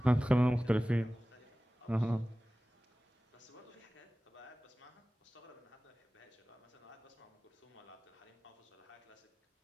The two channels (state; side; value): normal; both; correlation 0.97